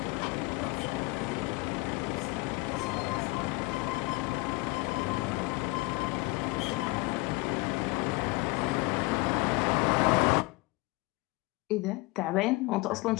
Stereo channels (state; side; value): quieter; right; 24.3 dB